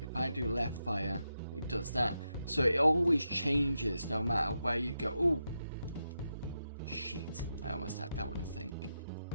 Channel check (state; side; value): inverted; both; correlation -0.86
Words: If I do left fire, it does that. So it always changes no matter where you go. Oh, shit. I almost had that one, I think.